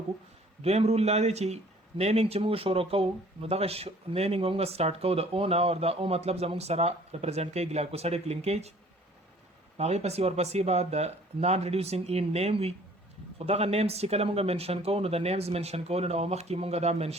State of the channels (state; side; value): normal; both; correlation 0.54